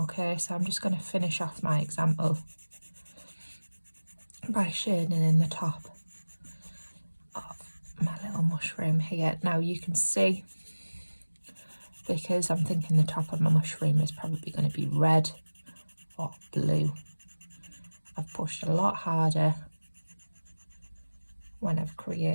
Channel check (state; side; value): inverted; both; correlation -1.00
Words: so I'm just going to finish off my example by shading in the top of my little mushroom here. Now you can see, because I'm thinking the top of my mushroom is probably going to be red or blue, I've pushed a lot harder when I've